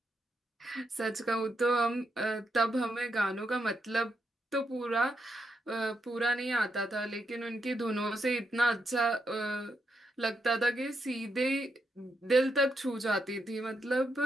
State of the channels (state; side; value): normal; both; correlation 0.82